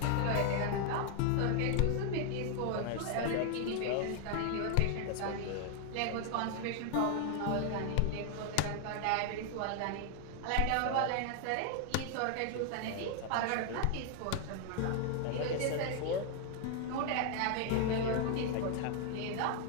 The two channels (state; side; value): different; both; correlation 0.00